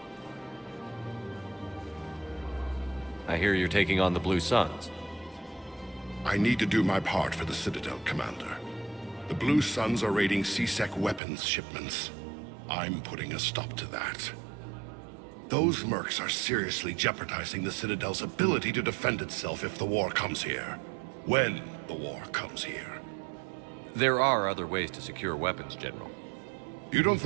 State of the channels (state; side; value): drops out; left; at 11.2 s